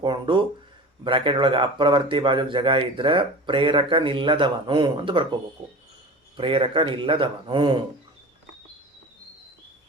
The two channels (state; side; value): normal; both; correlation 0.34